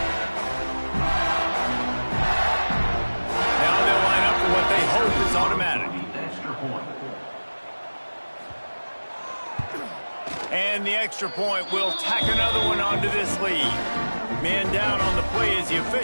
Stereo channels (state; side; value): inverted; both; correlation -1.00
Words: Now they'll line up for what they hope is automatic. And the extra point will tack another one onto this lead. Man down on the play as the